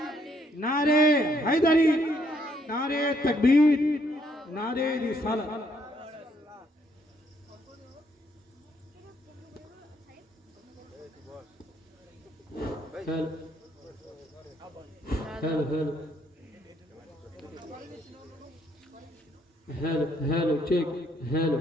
নারে হায়দারি নারে তাকবীর নারে রিসালাত hello check hello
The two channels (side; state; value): both; normal; correlation 0.70